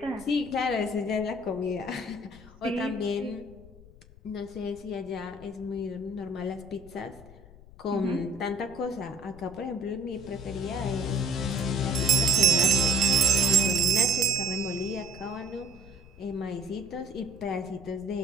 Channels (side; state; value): left; noise; rumble, 20 dB below the sound